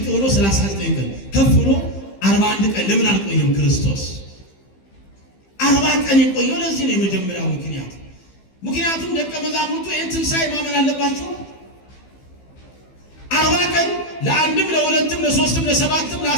ብሎ 39 ቀን ከፍ ብሎ 41 ቀን ለምን አልቆየም? ክርስቶስ 40 ቀን የቆየው ለዚህ ነው። የመጀመሪያው ምክንያት ምክንያቱም ደቀ መዛሙርቱ ይህን ትንሣኤ ማመን አለባቸው። 40 ቀን ለአንድም ለሁለትም ለሶስትም ለሰባትም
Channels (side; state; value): right; late; 15 ms